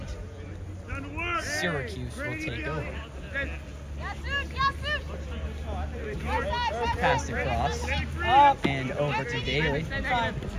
Syracuse will take over. Passed across and over to Daly.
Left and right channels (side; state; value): both; identical; correlation 1.00